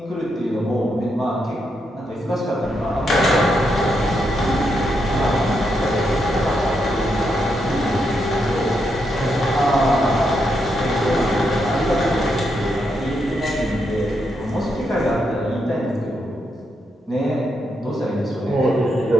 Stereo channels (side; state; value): both; normal; correlation 0.81